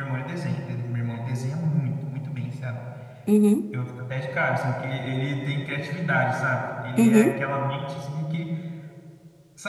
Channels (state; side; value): identical; both; correlation 1.00